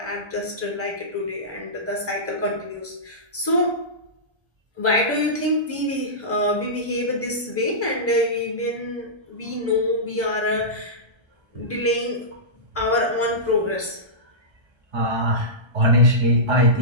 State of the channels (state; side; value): late; left; 1.3 ms